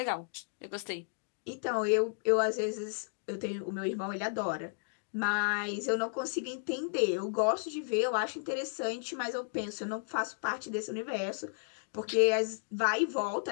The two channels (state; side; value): silent; right; digital silence